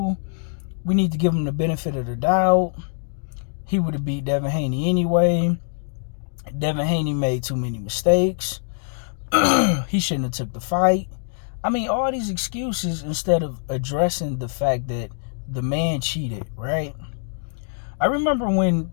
need to give him the benefit of the doubt. He would have beat Devin Haney anyway. Devin Haney made too many mistakes. He shouldn't have took the fight. I mean, all these excuses instead of addressing the fact that the man cheated, right? I remember when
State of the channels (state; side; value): silent; right; digital silence